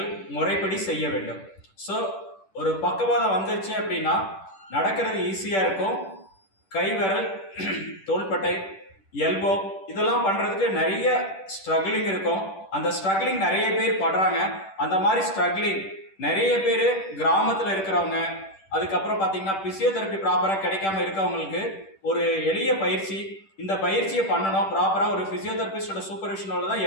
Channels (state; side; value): late; right; 10 ms